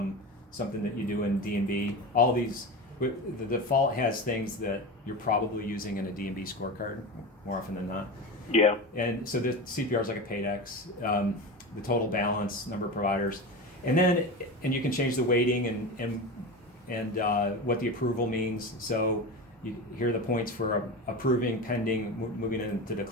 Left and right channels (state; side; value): normal; both; correlation 0.25